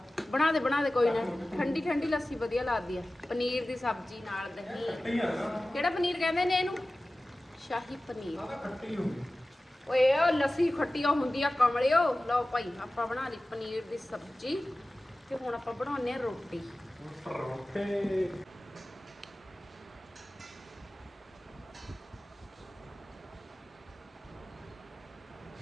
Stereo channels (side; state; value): both; normal; correlation 0.96